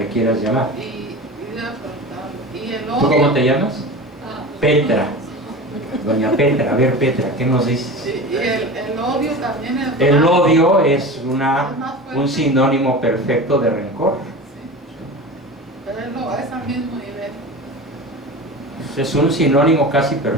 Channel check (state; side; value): normal; both; correlation 0.32